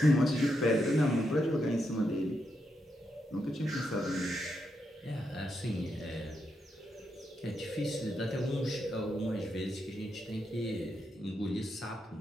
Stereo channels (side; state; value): both; normal; correlation 0.82